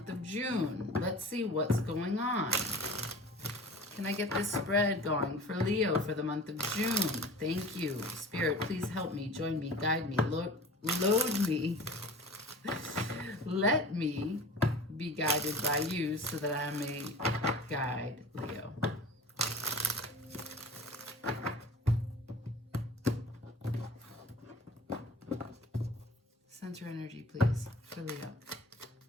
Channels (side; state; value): both; normal; correlation 0.40